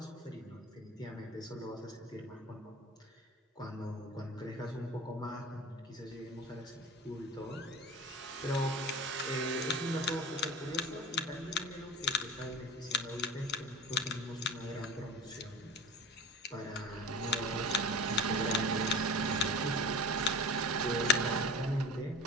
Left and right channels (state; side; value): normal; both; correlation 0.36